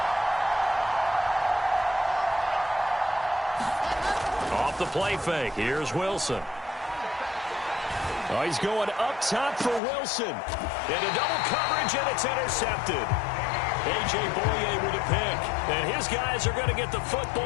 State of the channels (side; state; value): right; drops out; at 9.8 s